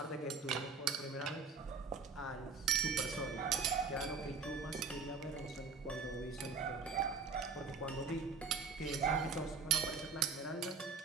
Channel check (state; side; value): quieter; left; 5.0 dB